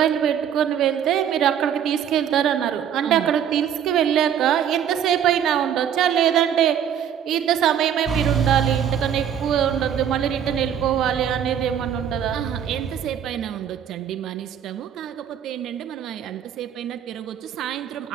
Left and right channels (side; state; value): left; quieter; 9.0 dB